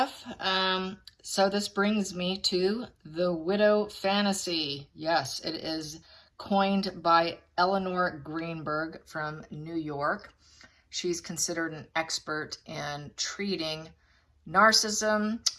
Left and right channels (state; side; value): identical; both; correlation 1.00